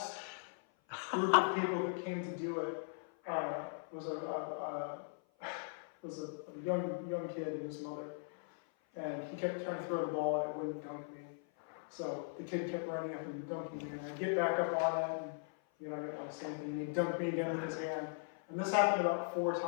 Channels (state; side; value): silent; right; 52 dB below the other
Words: group of people that came to do it was a young kid and his mother, and he kept trying to throw the ball and it wouldn't dunk me. So the kid kept running up and dunking me, and I'd get back up on it, and I didn't say anything, and he'd dunk me again with his hand. And this happened about 4